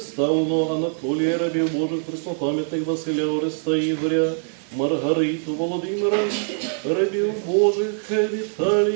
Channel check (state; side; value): silent; left; 63 dB below the other